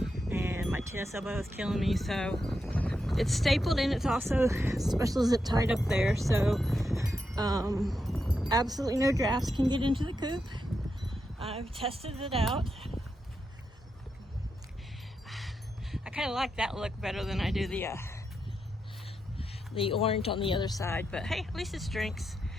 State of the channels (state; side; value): normal; both; correlation 0.85